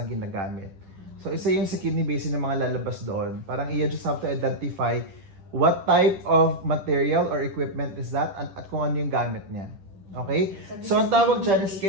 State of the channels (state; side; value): late; left; 10 ms